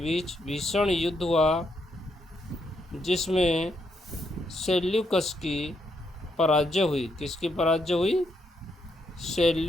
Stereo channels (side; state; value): both; normal; correlation 0.78